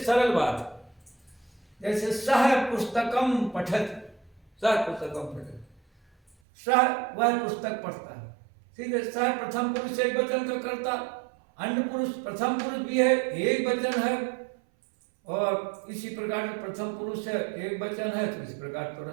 बात है। जैसे सह पुस्तकम पठत, सह पुस्तकम पठत, सह वह पुस्तक पढ़ता है, सीधे सह प्रथम पुरुष एक वचन का कर्ता, अन्य पुरुष प्रथम पुरुष भी है, एक वचन है, और इसी प्रकार से प्रथम पुरुष है, एक वचन है, तो इसी प्रकार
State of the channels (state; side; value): drops out; left; at 6.4 s